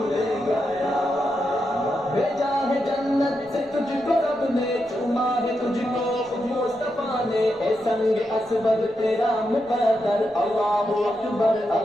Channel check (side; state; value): left; noise; rumble, 29 dB below the sound